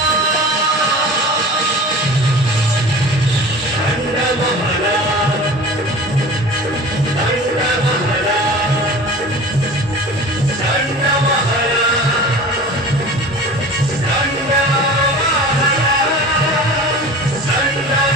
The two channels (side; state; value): both; normal; correlation 0.39